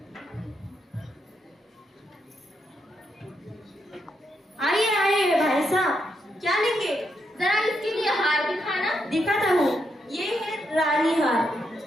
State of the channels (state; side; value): normal; both; correlation 0.81